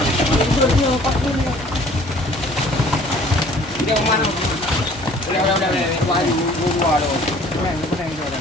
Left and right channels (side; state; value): both; normal; correlation 0.53